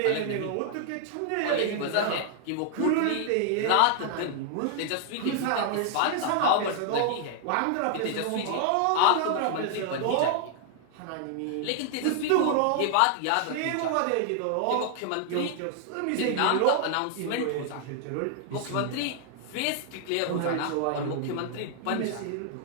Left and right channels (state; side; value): different; both; correlation 0.00